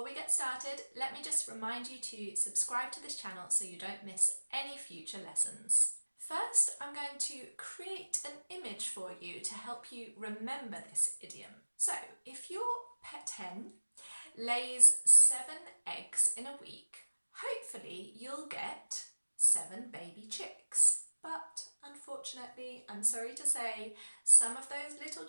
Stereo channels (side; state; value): both; inverted; correlation -1.00